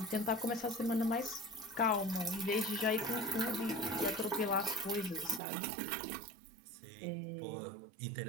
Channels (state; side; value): drops out; left; at 5.4 s